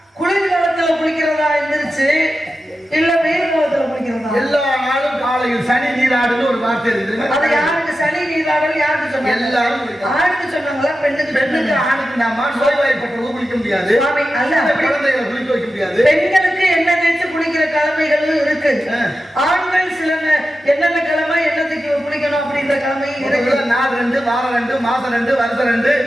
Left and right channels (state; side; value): normal; both; correlation 0.92